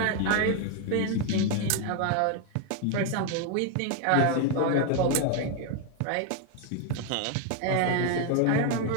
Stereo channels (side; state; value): both; different; correlation 0.01